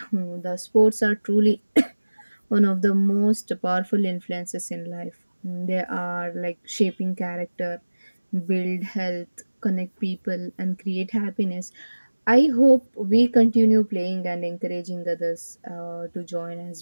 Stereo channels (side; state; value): both; inverted; correlation -1.00